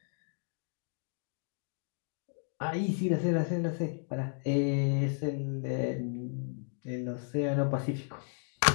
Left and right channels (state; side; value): silent; right; 55 dB below the other